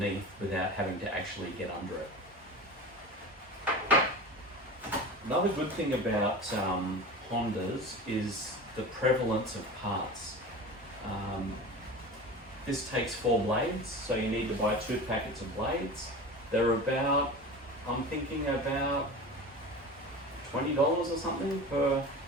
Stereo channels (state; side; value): normal; both; correlation 0.32